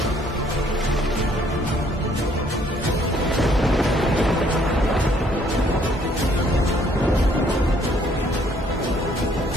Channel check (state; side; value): normal; both; correlation 0.64